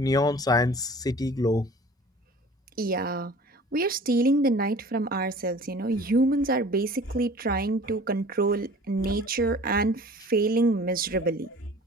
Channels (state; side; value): normal; both; correlation 0.45